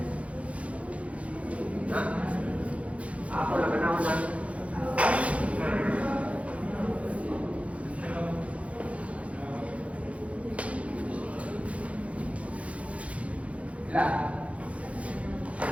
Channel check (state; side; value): late; left; 0.064 ms